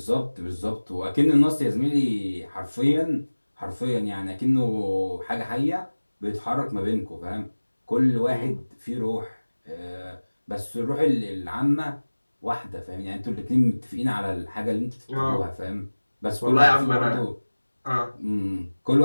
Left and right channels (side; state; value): both; inverted; correlation -1.00